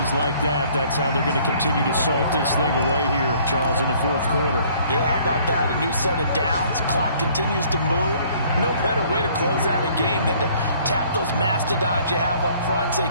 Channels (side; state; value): both; inverted; correlation -0.58